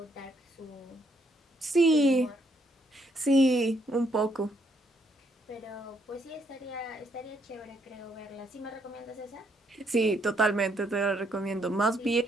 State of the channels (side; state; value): both; normal; correlation 0.73